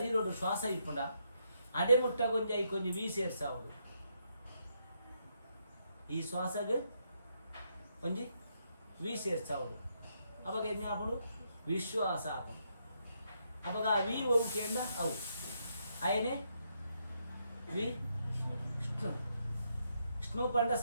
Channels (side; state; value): both; inverted; correlation -0.78